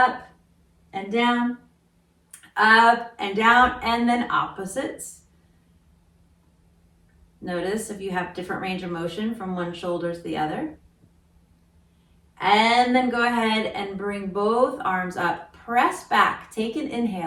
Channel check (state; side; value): identical; both; correlation 1.00